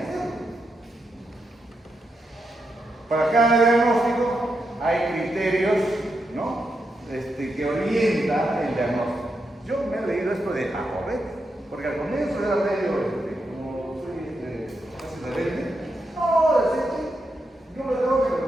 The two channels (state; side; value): normal; both; correlation 0.84